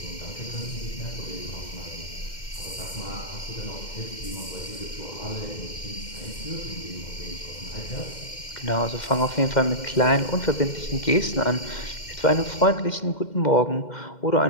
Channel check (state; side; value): late; right; 2.1 ms